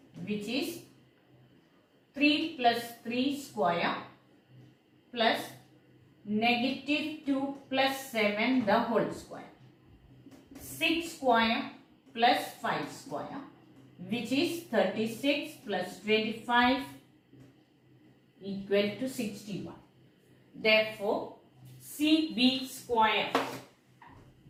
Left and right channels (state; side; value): identical; both; correlation 1.00